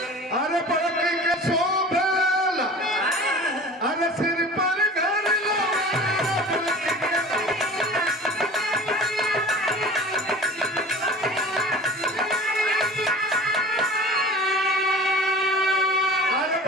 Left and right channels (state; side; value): normal; both; correlation 0.40